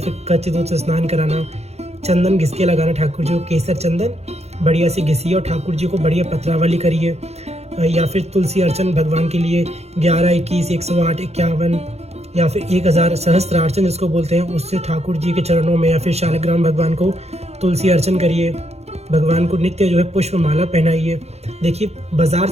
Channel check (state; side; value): late; left; 0.31 ms